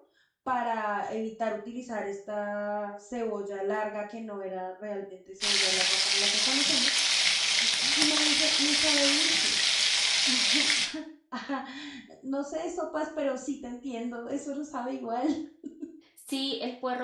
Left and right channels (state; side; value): identical; both; correlation 1.00